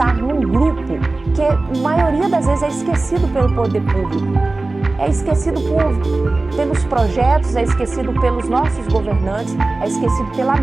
num grupo que a maioria das vezes é esquecido pelo poder público, é esquecido pelos projetos, é esquecido pelos nossos governantes, é esquecido pela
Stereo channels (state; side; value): quieter; left; 3.2 dB